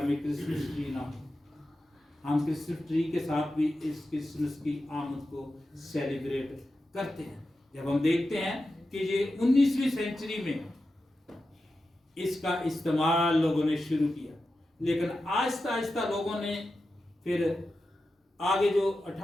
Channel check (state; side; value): normal; both; correlation 0.91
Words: में क्रिसमस ट्री ना हो। हम क्रिसमस ट्री के साथ भी इस क्रिसमस की आमद को सेलिब्रेट करते हैं। जब हम देखते हैं कि ये 19वीं सेंचुरी में इसका इस्तेमाल लोगों ने शुरू किया, लेकिन आहिस्ता आहिस्ता लोगों ने फिर आगे जो